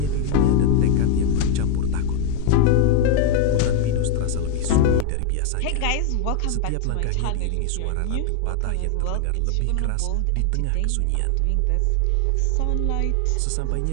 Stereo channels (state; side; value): different; both; correlation 0.01